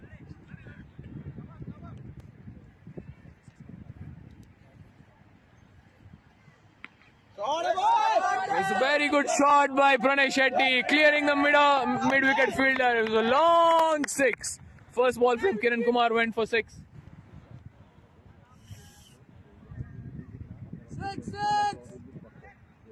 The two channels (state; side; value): identical; both; correlation 1.00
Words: It's a very good shot by Pranay Shetty, clearing the mid-wicket fielder. It was a long 6. First ball from Kiran Kumar went for 6. 6.